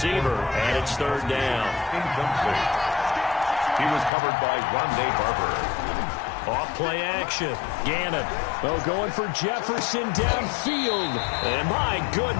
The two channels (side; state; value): right; drops out; at 4.1 s